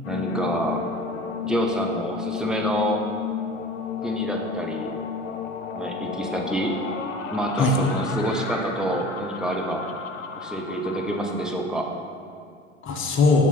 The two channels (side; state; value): both; normal; correlation 0.44